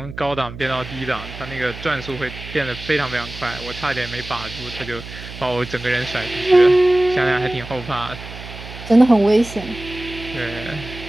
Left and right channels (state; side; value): noise; right; hum, 13 dB below the sound